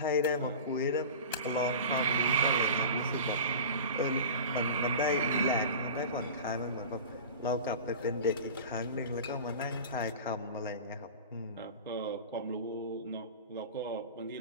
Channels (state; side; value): inverted; both; correlation -0.34